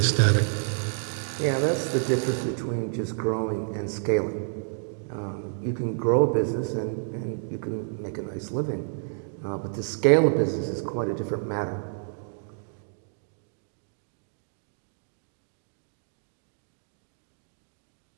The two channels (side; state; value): left; silent; digital silence